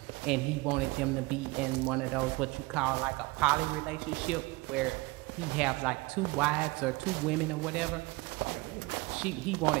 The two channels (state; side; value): quieter; left; 23.5 dB